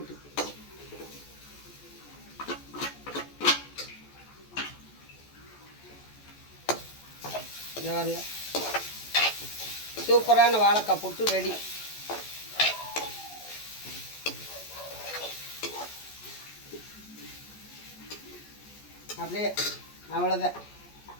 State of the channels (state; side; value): late; right; 14 ms